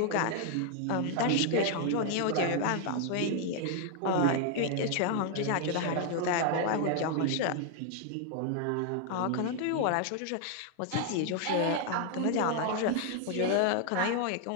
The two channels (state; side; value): different; both; correlation 0.00